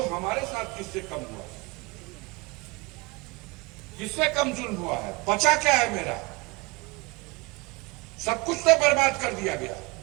हमारे साथ किससे कम हुआ, किससे कम जुल्म हुआ है। बचा क्या है मेरा? सब कुछ तो बर्बाद कर दिया गया।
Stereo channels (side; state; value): left; quieter; 25.1 dB